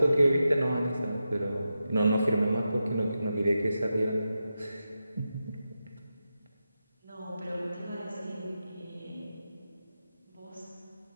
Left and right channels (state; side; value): inverted; both; correlation -0.90